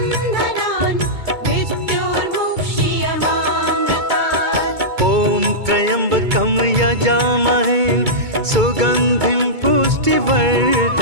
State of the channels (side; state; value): left; late; 2.2 ms